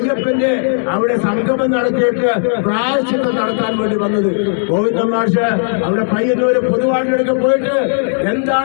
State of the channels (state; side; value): silent; right; 69 dB below the other